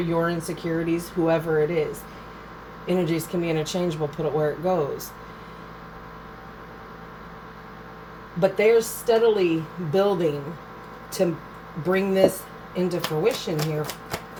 insecurities, whoever it is. Energies can be interchangeable, put it where it goes. But they're steadily building to bring this into fruition here,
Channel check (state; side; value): identical; both; correlation 1.00